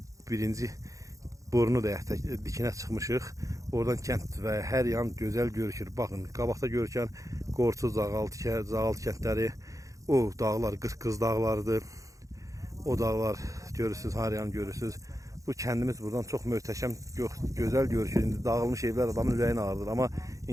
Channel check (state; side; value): late; left; 0.16 ms